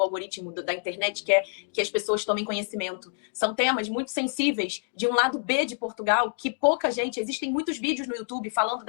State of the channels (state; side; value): silent; right; 60 dB below the other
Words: algoritmo da internet quer que as pessoas tomem conhecimento. São temas muito sensíveis de um lado B de Portugal, que pouca gente... Existem muitos vídeos no YouTube falando